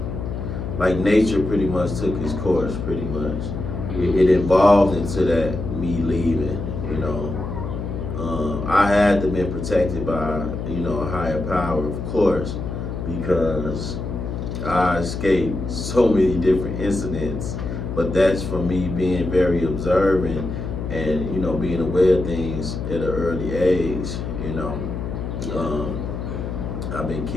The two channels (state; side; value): noise; left; hum, 5 dB below the sound